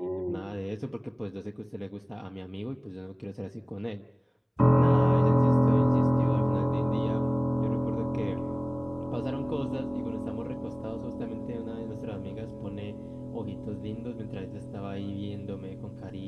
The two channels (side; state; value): both; identical; correlation 1.00